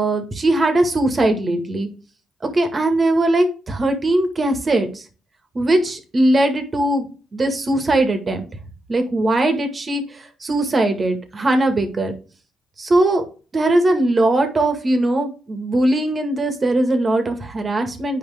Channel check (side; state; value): both; normal; correlation 0.87